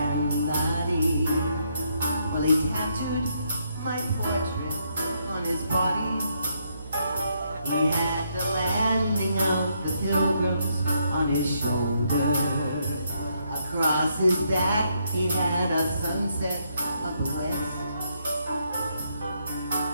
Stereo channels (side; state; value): both; inverted; correlation -0.75